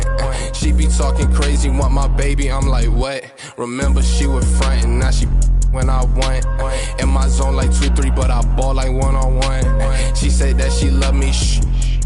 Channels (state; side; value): identical; both; correlation 1.00